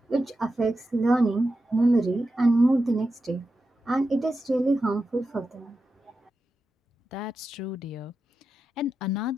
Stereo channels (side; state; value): both; normal; correlation 0.90